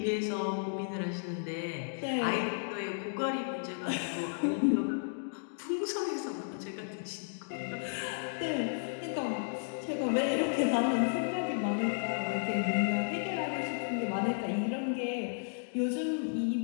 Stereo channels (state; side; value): silent; right; digital silence